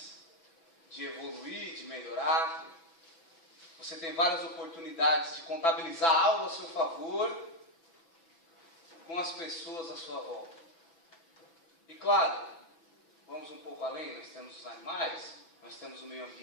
de evoluir, de melhorar. Você tem várias oportunidades de contabilizar algo a seu favor com as pessoas à sua volta. E claro, vamos um pouco além, nós temos os animais, nós temos o meio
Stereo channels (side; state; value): right; late; 6.0 ms